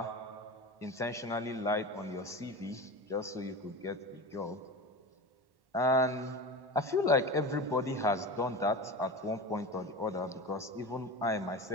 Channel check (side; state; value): left; late; 1.1 ms